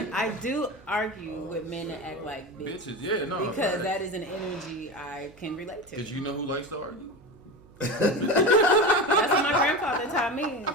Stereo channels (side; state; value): right; noise; hum, 25 dB below the sound